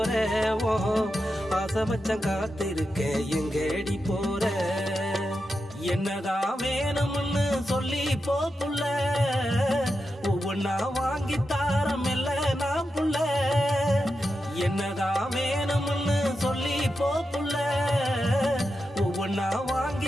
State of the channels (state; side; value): normal; both; correlation 0.89